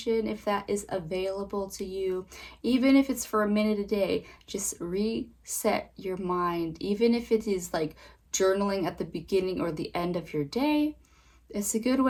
if that is available to you, even if it's for a minute a day, just reset your mind. Even if it is like journaling at the beginning or the end of your day, it's a good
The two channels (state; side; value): identical; both; correlation 1.00